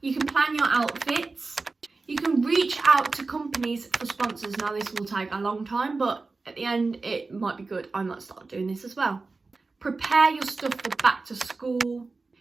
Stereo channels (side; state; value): left; quieter; 3.8 dB